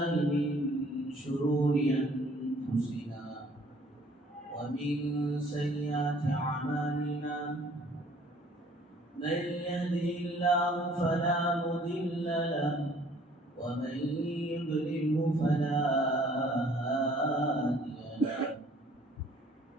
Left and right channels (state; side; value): normal; both; correlation 0.57